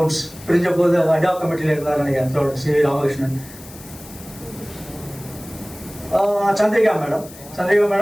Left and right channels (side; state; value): left; noise; hiss, 19 dB below the sound